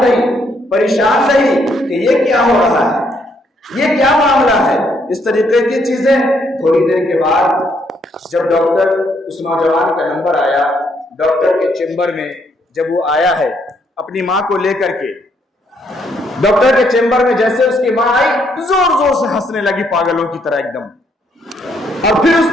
रही, परेशान रही कि ये क्या हो रहा है, ये क्या मामला है, इस तरीके की चीजें। थोड़ी देर के बाद जब डॉक्टर, उस नौजवान का नंबर आया, डॉक्टर के चेंबर में जब वो आया है अपनी माँ को लेकर के, डॉक्टर के चेंबर में जैसे उसकी माँ आई, जोर जोर से हंसने लगी पागलों की तरह एकदम, और फिर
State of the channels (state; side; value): normal; both; correlation 0.72